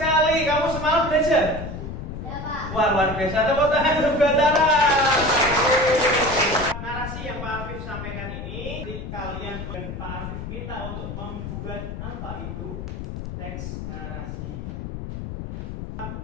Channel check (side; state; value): left; noise; rumble, 7 dB below the sound